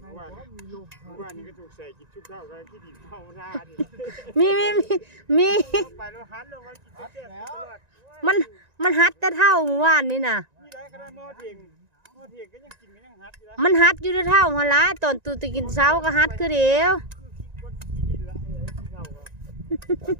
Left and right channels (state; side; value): late; left; 1.9 ms